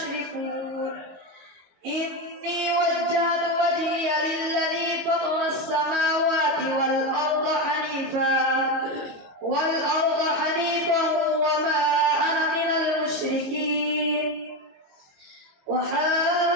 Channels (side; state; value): left; late; 22 ms